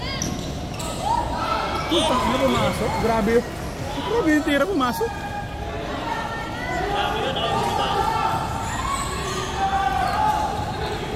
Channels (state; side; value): identical; both; correlation 1.00